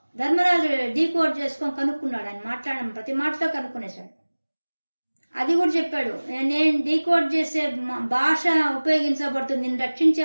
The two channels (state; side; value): inverted; both; correlation -1.00